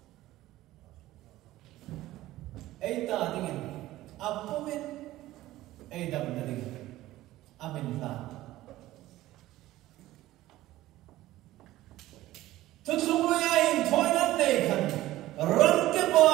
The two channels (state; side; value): quieter; left; 16.0 dB